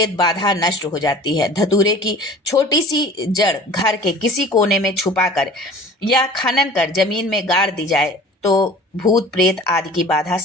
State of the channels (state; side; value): normal; both; correlation 0.44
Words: बाधा नष्ट हो जाती है। धतूरे की छोटी सी जड़ घर के किसी कोने में छुपाकर या खनन कर जमीन में गाड़ दी जाए, तो भूत प्रेत आदि की बाधा